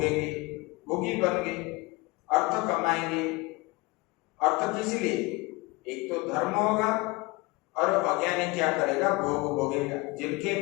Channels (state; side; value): quieter; right; 23.7 dB